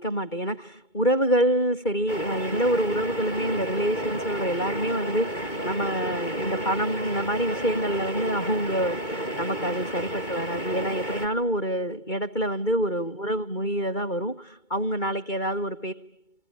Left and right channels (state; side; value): late; right; 2.2 ms